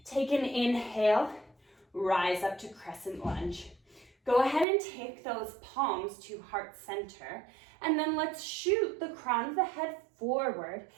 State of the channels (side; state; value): left; drops out; at 4.7 s